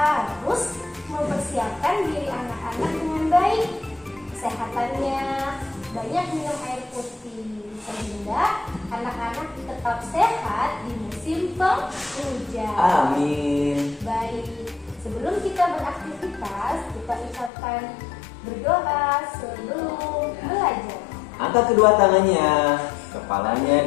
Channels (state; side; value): drops out; right; at 17.5 s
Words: mempersiapkan diri anak-anak dengan baik. Kesehatannya, banyak minum air putih, sehingga anak-anak tetap sehat di musim penghujan. Amin. Baik, sebelum kita beraktivitas, kita ucapkan berdoa sebelum belajar. Angkat kedua tangannya,